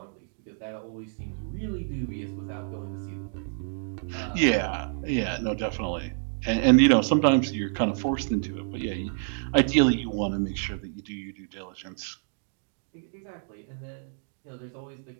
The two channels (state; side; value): silent; left; digital silence